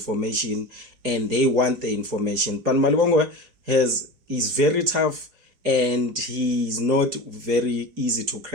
and they want the information. But Malibongwe is very tough and he's not very easy to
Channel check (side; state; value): left; late; 4.7 ms